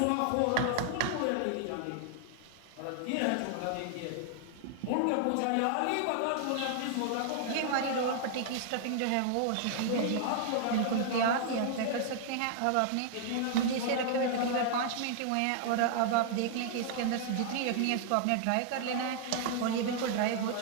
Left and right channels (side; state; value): both; different; correlation 0.00